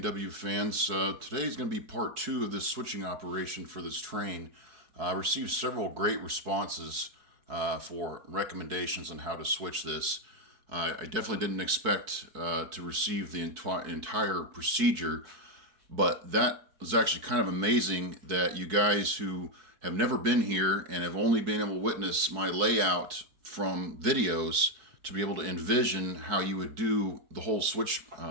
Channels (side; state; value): left; late; 4.7 ms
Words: fans. Today is going to be part two of this switching operation for this train. I received several great responses for recommendations on how to switch this. I definitely didn't expect to receive the entire procedure, but that was actually kind of amazing that you guys who have never been here and have only been able to witness my layout from videos to be able to envision how you would do the whole switch